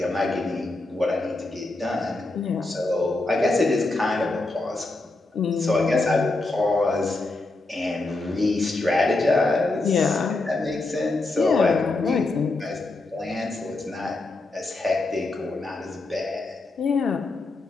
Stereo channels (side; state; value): right; quieter; 3.1 dB